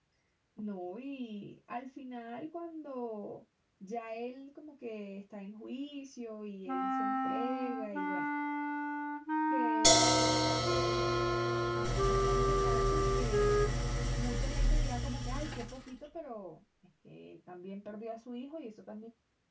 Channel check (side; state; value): both; identical; correlation 1.00